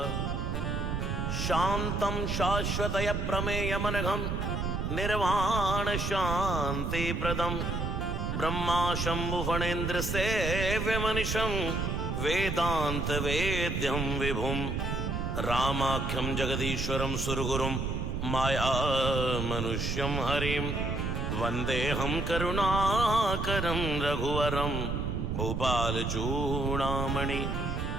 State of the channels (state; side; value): noise; right; rumble, 1 dB below the sound